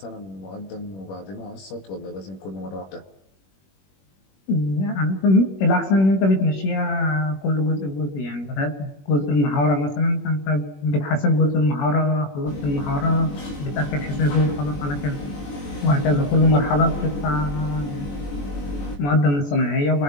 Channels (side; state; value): right; late; 21 ms